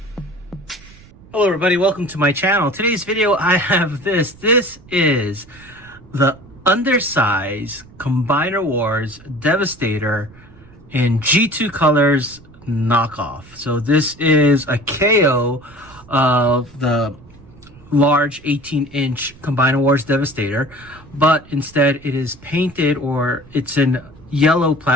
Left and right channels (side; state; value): right; noise; rumble, 23 dB below the sound